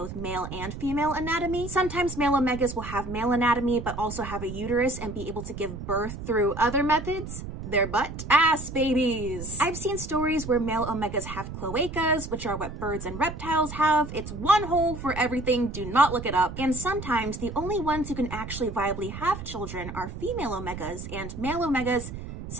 male and female anatomy. Sometimes male omegas will have male anatomy but also have a uterus and be able to give birth through other methods. Their butt ass babies. I've seen stories where male omegas have cloacas, which are what birds and reptiles have. It's one hole for everything, do not look it up. And sometimes the only ones who can actually viably have children are female omegas, and male omegas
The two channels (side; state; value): right; noise; rumble, 9 dB below the sound